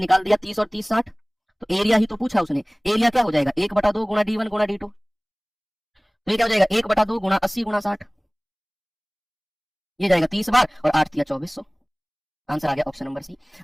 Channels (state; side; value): identical; both; correlation 1.00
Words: निकाल दिया 30 और 30 60। तो एरिया ही तो पूछा उसने, एरिया क्या हो जाएगा 1/2 गुणा d1 गुणा d2, तो ये क्या हो जाएगा 1/2 गुणा 80 गुणा 60, ये जाएगा 30 बार और 8 × 2400। आंसर आ गया ऑप्शन नंबर सी।